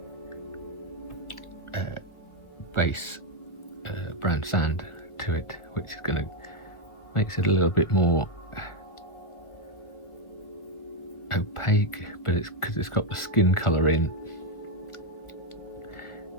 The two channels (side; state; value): right; late; 1.8 ms